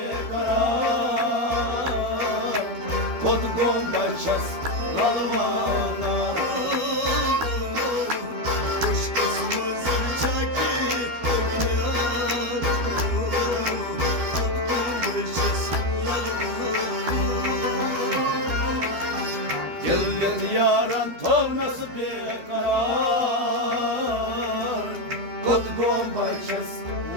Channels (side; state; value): left; late; 12 ms